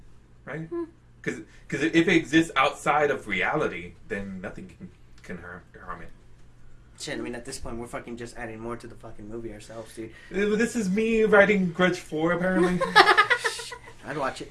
right? Because if it exists outside of reality, then nothing can harm it. Shit, I mean, at this point, we're fucking just adding more to the fucking movie ourselves, dude. This is me writing Grudge 4, apparently. I'd watch it.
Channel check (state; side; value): identical; both; correlation 1.00